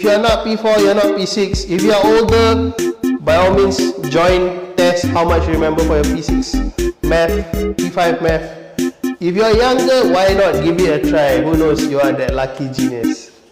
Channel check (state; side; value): identical; both; correlation 1.00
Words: you're not P4, you're not P6. If you're older, by all means, join, test how much you remember for your P6 Math, P5 Math. If you're younger, why not give it a try? Who knows, you are that lucky genius.